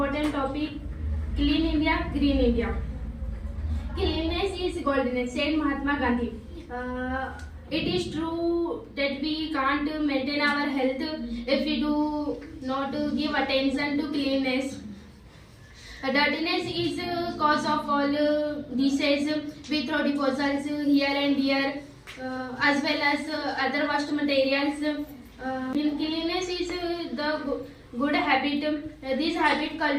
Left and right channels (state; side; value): identical; both; correlation 1.00